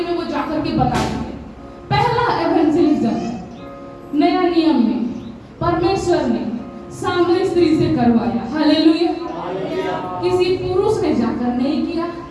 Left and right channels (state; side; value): identical; both; correlation 1.00